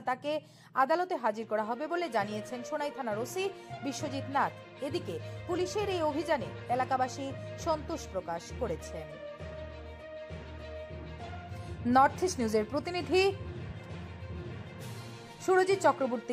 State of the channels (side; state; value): both; identical; correlation 1.00